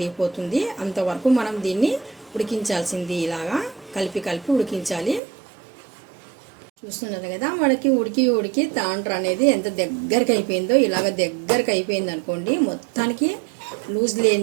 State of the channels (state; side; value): drops out; left; at 5.2 s